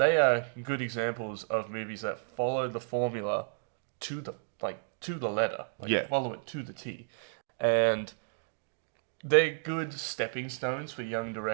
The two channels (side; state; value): left; silent; digital silence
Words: examples of movies that follow the formula to the letter. Like follow it to the T. And they're good stepping stones for young